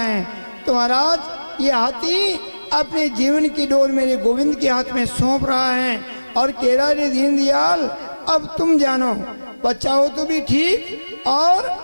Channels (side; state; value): both; inverted; correlation -1.00